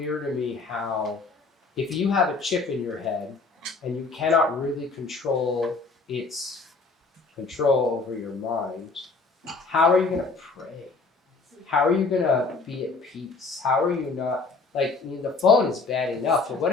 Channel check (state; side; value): quieter; right; 4.0 dB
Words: to me how, if you have a chip in your head and you cannot really control its control over your mind, how are you going to pray? How are you going to be at peace? How are you not, like, I mean, the phone is bad enough, but what